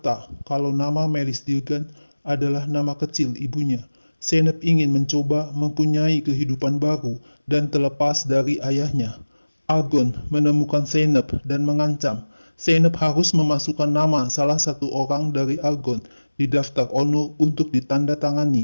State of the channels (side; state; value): both; inverted; correlation -1.00